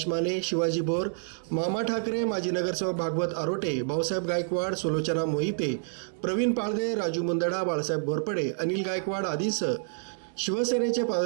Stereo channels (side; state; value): left; silent; 59 dB below the other